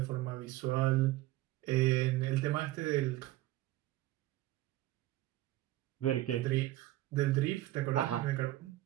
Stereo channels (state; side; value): quieter; left; 16.1 dB